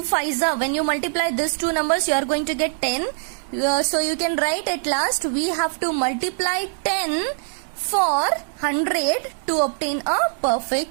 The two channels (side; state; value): left; silent; digital silence